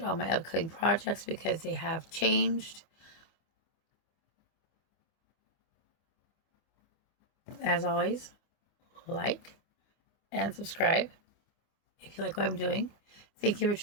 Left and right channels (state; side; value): late; right; 25 ms